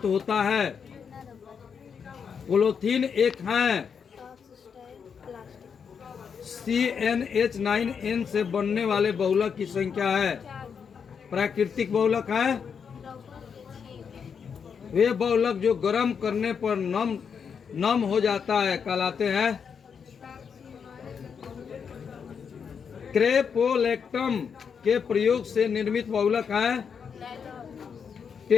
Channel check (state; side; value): quieter; right; 6.6 dB